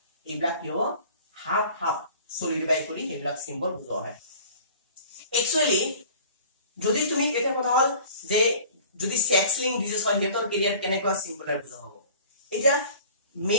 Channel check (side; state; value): both; inverted; correlation -0.46